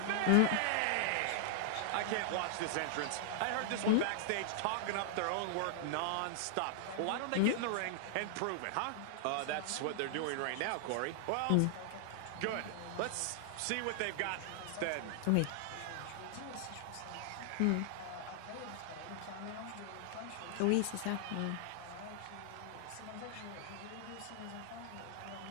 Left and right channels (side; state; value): both; different; correlation -0.01